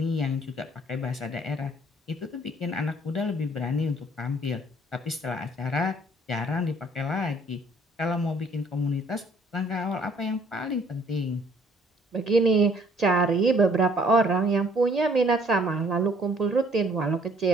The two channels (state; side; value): normal; both; correlation 0.60